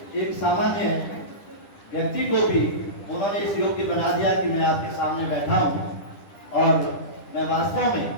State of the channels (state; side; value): late; right; 10 ms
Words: एक सामान्य व्यक्ति को भी उन्होंने इस योग्य बना दिया कि मैं आपके सामने बैठा हूँ। और मैं वास्तव में,